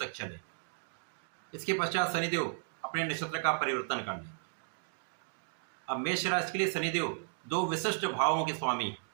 चले। इसके पश्चात शनिदेव अपने नक्षत्र का परिवर्तन कर लें। अब मेष राशि के लिए शनिदेव 2 विशिष्ट भावों के स्वामी हैं।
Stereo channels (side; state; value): left; silent; digital silence